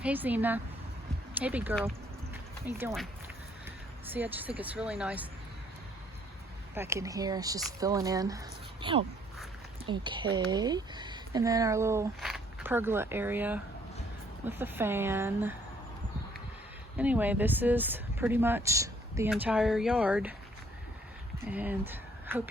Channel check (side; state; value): both; normal; correlation 0.64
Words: Hey Zena. Hey big girl. How you doing? See, I just think it's really nice. Back in here, it's just filling in. Oh, okay. And then our little pergola area with the fan. Anyway, this is pretty much the entire yard, and hope